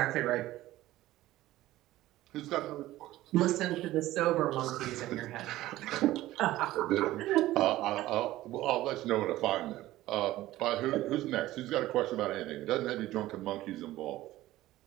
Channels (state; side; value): quieter; left; 16.0 dB